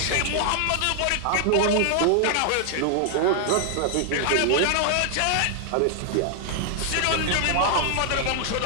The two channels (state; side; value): different; both; correlation 0.00